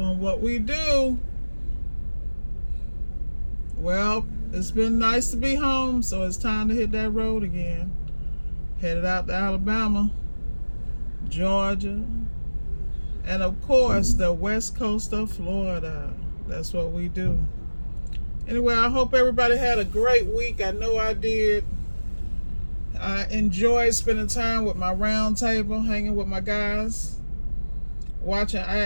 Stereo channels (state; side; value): inverted; both; correlation -1.00